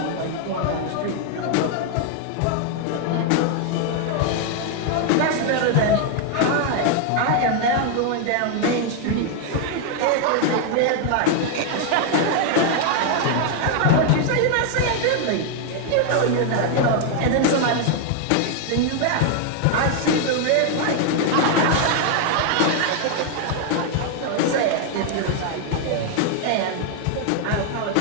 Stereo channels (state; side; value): different; both; correlation 0.00